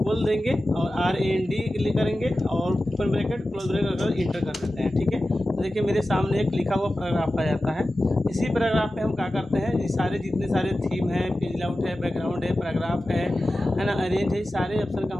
देंगे और RAND क्लिक करेंगे और ओपन ब्रैकेट क्लोज ब्रैकेट अगर इंटर कर देते हैं, ठीक है। तो देखिए मेरे सामने एक लिखा हुआ पैराग्राफ आ जाता है। इसी पैराग्राफ में हम क्या करते हैं, ये सारे जितने सारे थीम है, पेज लेआउट है, बैकग्राउंड है, पैराग्राफ है ना, अरेंज है, सारे ऑप्शन का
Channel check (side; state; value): both; normal; correlation 0.94